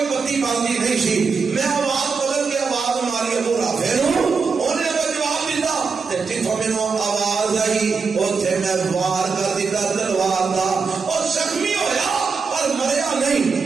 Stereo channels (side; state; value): left; quieter; 5.0 dB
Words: بتی باندھی نہیں سی میں آواز بدل کے آواز ماری ابو رافع انہیں جواب دیتا جتوں میرے آواز آئی اتنے میں وار کر دیتا تلوار کا اور زخمی ہویا پر مریا نہیں